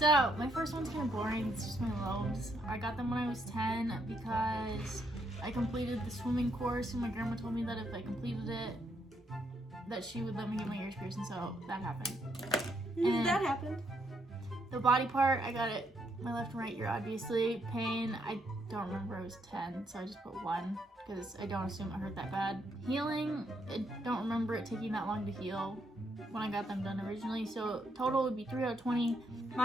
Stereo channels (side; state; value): both; normal; correlation 0.75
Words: my first one's kind of boring. It's just my lobes. I got them when I was 10 because I completed the swimming course, and my grandma told me that if I completed it, that she would let me get my ears pierced, and so that happened. And that happened. the body part, I got it my left and right ear, obviously. Pain, I don't remember. I was 10, so I just put 1 because I don't assume it hurt that bad. Healing, I don't remember it taking that long to heal when I got them done originally, so total would be 3 out of 20.